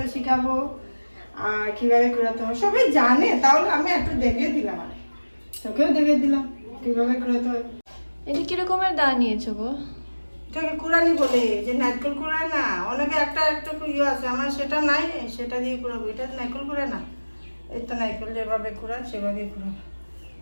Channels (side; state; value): both; inverted; correlation -1.00